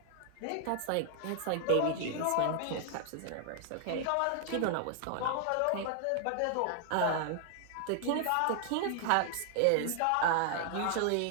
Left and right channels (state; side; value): different; both; correlation 0.00